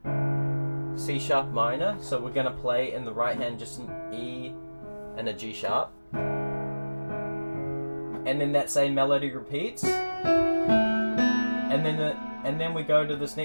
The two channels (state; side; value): inverted; both; correlation -1.00